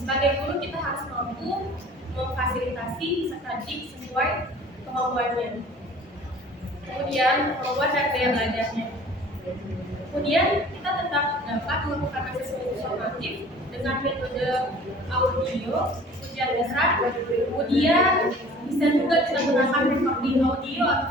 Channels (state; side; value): normal; both; correlation 0.48